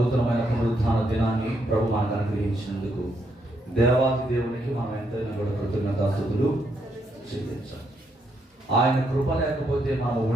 పునరుత్థాన దినాన్ని ప్రభు మనకు అనుగ్రహించినందుకు దేవాది దేవునికి మనం ఎంతైనా కూడా కృతజ్ఞతాస్తుతులు చెల్లించాలి. ఆయన కృప లేకపోతే మనం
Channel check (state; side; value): normal; both; correlation 0.77